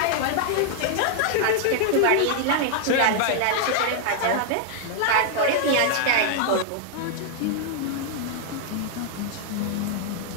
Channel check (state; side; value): different; both; correlation 0.00